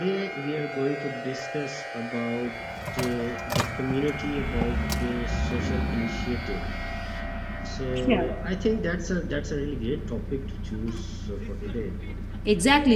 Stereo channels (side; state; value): both; identical; correlation 1.00